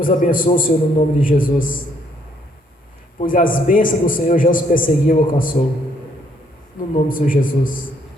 abençoe o Senhor no nome de Jesus, pois as bênçãos do Senhor já os perseguiu e alcançou. No nome do Senhor Jesus.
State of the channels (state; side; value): normal; both; correlation 0.69